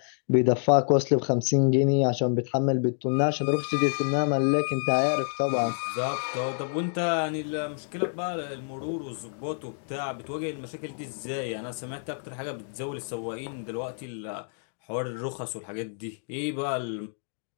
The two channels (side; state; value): right; silent; digital silence